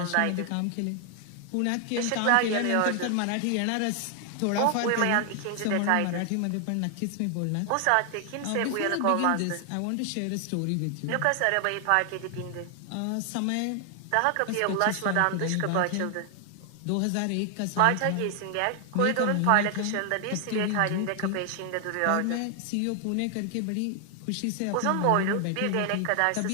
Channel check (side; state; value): both; different; correlation 0.00